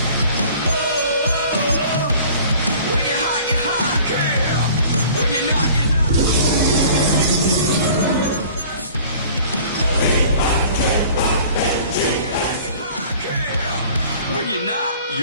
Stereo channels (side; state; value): both; inverted; correlation -0.48